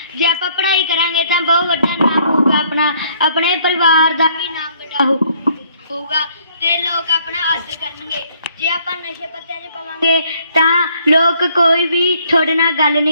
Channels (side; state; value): both; inverted; correlation -0.63